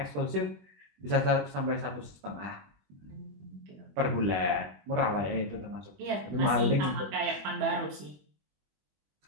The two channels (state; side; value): late; left; 20 ms